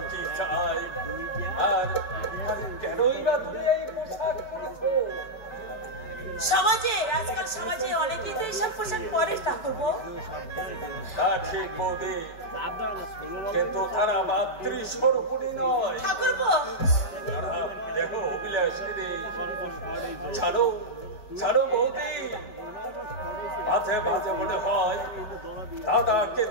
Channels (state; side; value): late; right; 4.6 ms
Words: কি চাই, আর কেনই বা তুমি এই পোশাক পরেছো? সমাজে আজকাল সমাজে অনেকেই তো এইসব পোশাক পরে ঠাকুরপো। তা ঠিক বৌদি, কিন্তু তারা মাতৃস্বরূপিণী নয় ঠাকুরপো। তারা দেখো অভিলাষিনী। ছাড়ো ছাড়ো বৌদি, মাঝে মাঝে মনে হয় দাদাকে